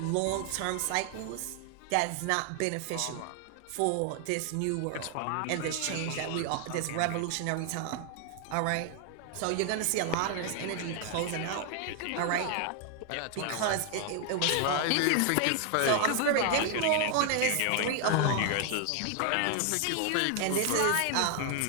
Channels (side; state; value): both; different; correlation 0.00